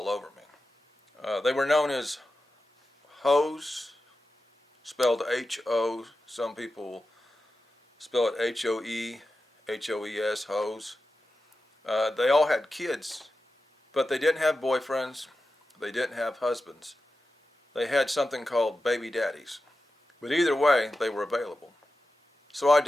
over me. They were known as hoes, spelled H-O. Some people spell it H-O-E, H-O-E-S, hoes. They all had kids, but they didn't have boyfriends. They didn't have husbands. They had something called baby daddies. But either way, they were available. So I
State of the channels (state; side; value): normal; both; correlation 0.92